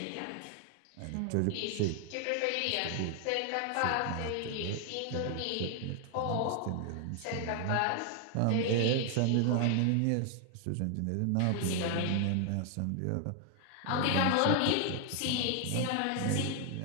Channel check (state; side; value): different; both; correlation 0.00